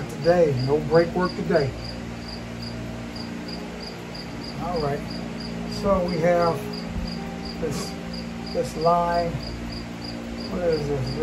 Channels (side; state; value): both; identical; correlation 1.00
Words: today. No brake work today. All right. So we have this line. What is